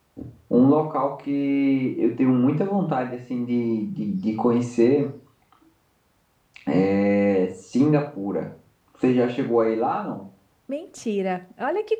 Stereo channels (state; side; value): identical; both; correlation 1.00